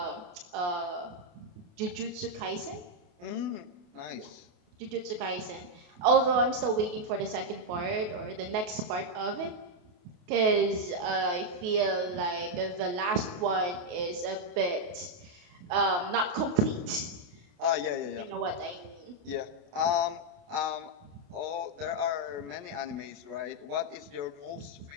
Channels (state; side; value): late; left; 28 ms